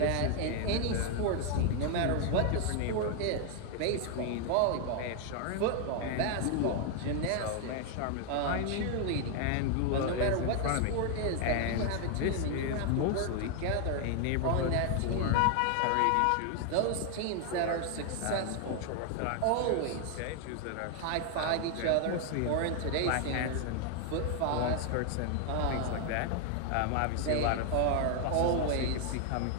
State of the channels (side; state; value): both; different; correlation 0.00